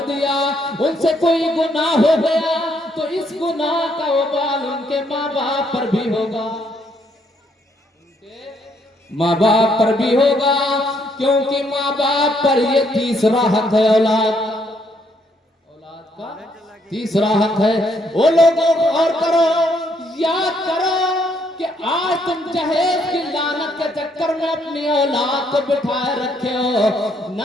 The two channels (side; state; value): both; normal; correlation 0.71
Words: دیا, ان سے کوئی گناہ ہو گیا, تو اس گناہ کا وبال ان کے ماں باپ پر بھی ہوگا, ماں باپ پر بھی ہوگا, کیونکہ ماں باپ پر یہ تیسرا حق ہے اولاد کا تیسرا حق ہے. وہ لوگوں غور کرو, یاد کرو کہ آج تم جہیز کی لعنت کے چکر میں اپنی اولاد کو بٹھائے رکھے ہو.